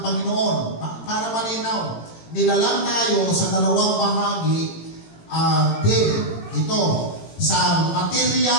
Panginoon. Para malinaw, nilalang tayo sa dalawang bahagi din. Ito, sa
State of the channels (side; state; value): right; late; 18 ms